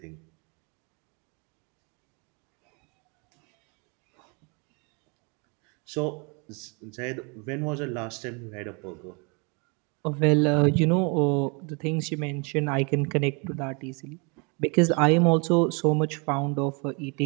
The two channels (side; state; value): left; quieter; 32.8 dB